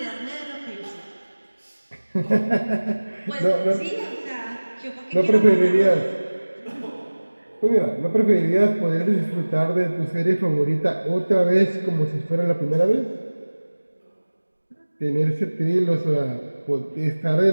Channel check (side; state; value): both; inverted; correlation -1.00